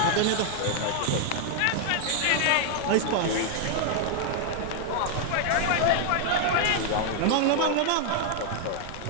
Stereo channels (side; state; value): both; different; correlation 0.00